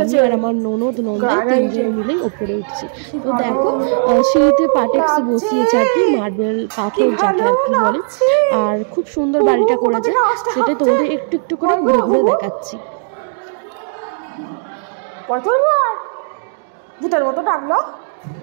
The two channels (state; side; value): silent; left; digital silence